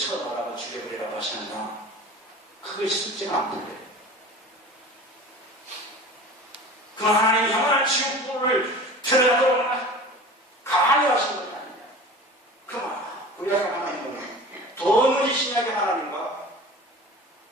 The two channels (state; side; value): normal; both; correlation 0.38